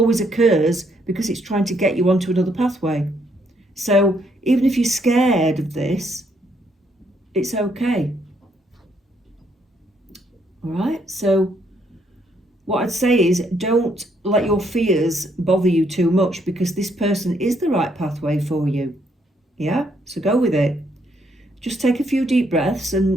occurs because it's trying to get you onto another pathway. So even if you're scared of this, it's okay. All right, so what I'd say is don't let your fears bother you too much because this person is the right pathway for you. Yeah, so go with it. Just take a few deep breaths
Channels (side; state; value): both; normal; correlation 0.72